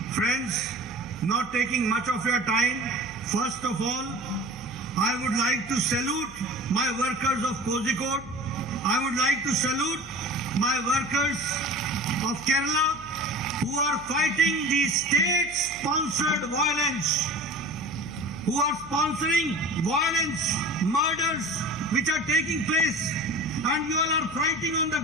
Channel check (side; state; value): right; noise; hum, 19 dB below the sound